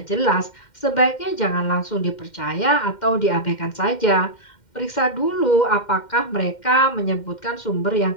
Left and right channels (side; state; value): right; late; 2.1 ms